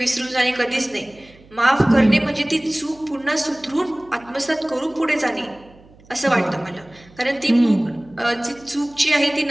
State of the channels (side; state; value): right; noise; hum, 26 dB below the sound